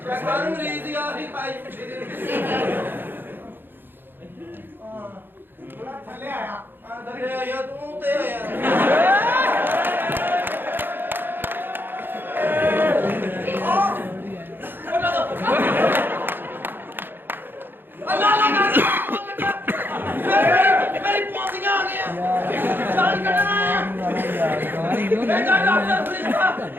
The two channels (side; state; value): left; late; 0.098 ms